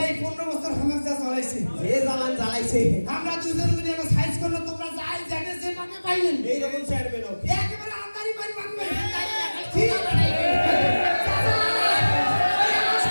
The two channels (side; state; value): both; inverted; correlation -1.00